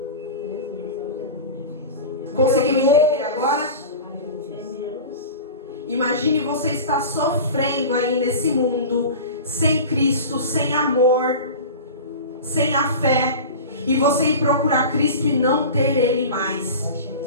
Conseguiu entender agora? Imagine você estar sofrendo aí nesse mundo, sem Cristo, sem amor, sem a fé, e você ir procurar Cristo e não ter Ele mais.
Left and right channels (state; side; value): inverted; both; correlation -0.32